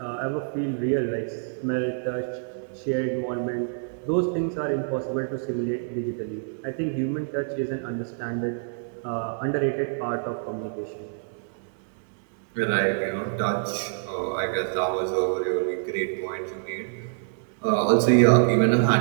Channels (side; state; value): left; silent; digital silence